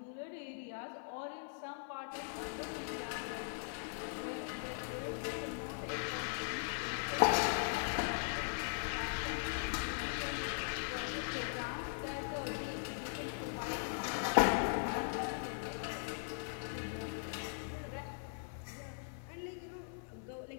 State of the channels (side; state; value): right; silent; 51 dB below the other